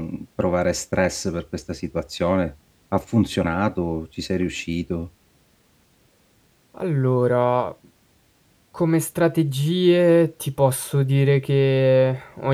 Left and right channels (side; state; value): both; identical; correlation 1.00